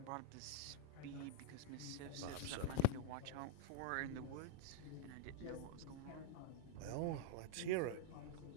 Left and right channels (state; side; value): different; both; correlation 0.00